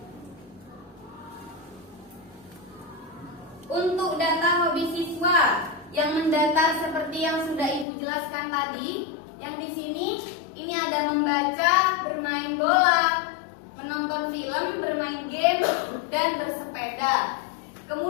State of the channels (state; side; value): drops out; right; at 7.9 s